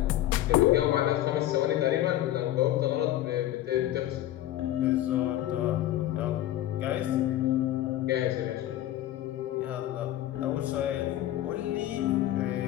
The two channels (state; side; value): quieter; right; 13.6 dB